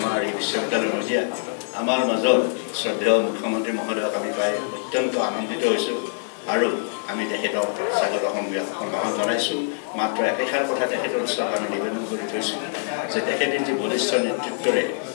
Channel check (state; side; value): silent; right; 63 dB below the other